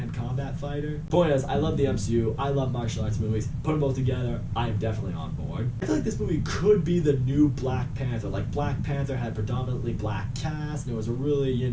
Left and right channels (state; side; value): identical; both; correlation 1.00